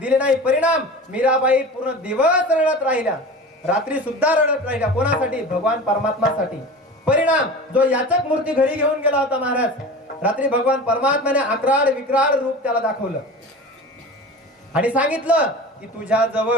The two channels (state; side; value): normal; both; correlation 0.34